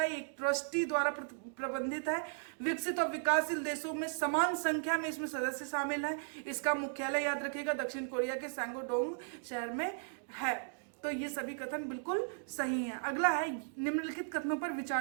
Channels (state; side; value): silent; left; digital silence